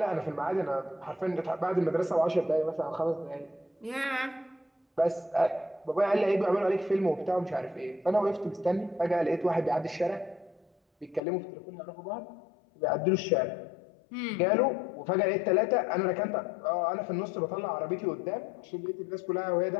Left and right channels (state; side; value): drops out; right; at 11.2 s